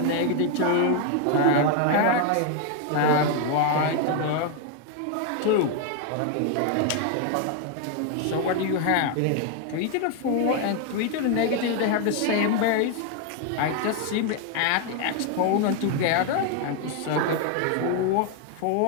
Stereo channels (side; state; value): both; different; correlation 0.00